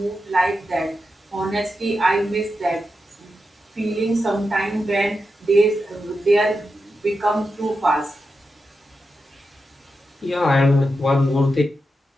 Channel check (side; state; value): both; normal; correlation 0.88